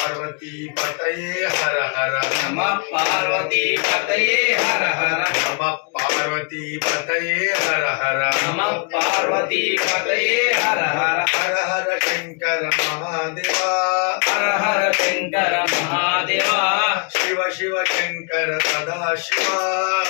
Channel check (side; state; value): right; quieter; 36.7 dB